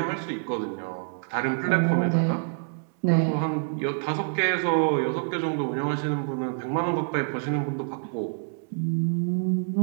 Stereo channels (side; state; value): left; silent; digital silence